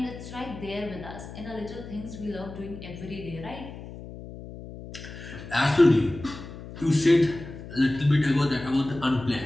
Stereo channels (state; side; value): noise; left; hum, 13 dB below the sound